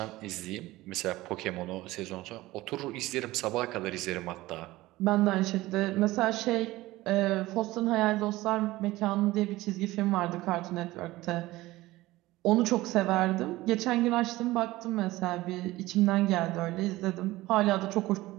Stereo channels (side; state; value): left; quieter; 18.2 dB